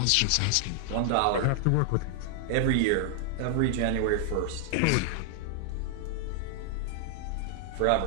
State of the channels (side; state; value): both; different; correlation 0.00